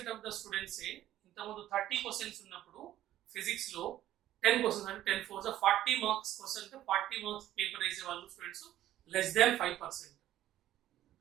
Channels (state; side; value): quieter; left; 13.2 dB